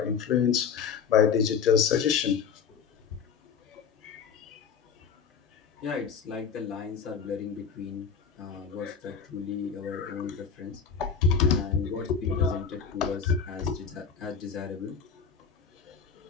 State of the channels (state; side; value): quieter; right; 6.4 dB